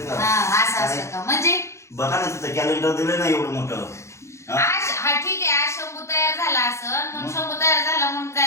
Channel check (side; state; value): right; late; 0.14 ms